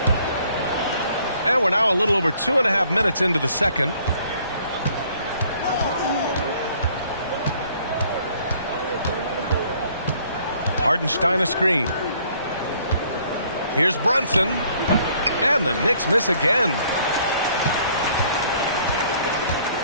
And we're now a little over 2.5 minutes into the second. Hartenstein a screen. Here's Brunson. And the Knicks miss again.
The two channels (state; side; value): inverted; both; correlation -0.61